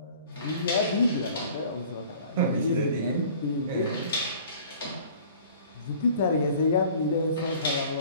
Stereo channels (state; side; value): inverted; both; correlation -0.49